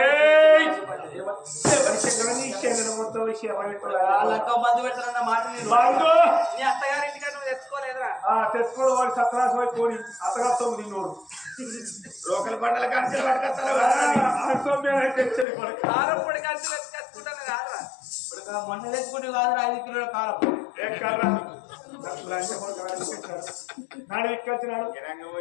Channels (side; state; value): right; drops out; at 15.5 s